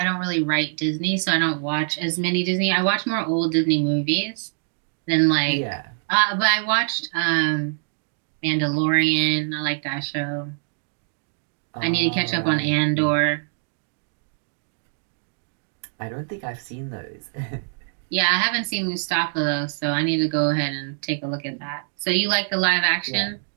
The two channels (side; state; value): left; silent; 63 dB below the other